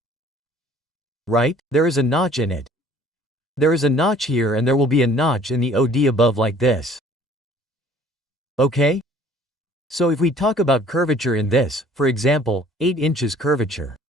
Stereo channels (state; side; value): normal; both; correlation 0.54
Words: Right? There is a notch in it. There is a notch here and there will be a notch in the OD above like this. Okay? So if we talk about curvature in this, for example, 8 inches curvature.